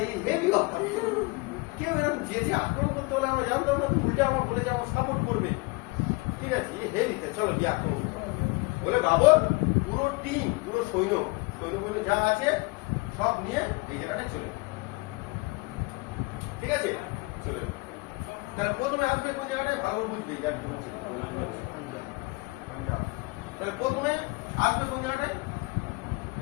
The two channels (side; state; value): right; quieter; 25.7 dB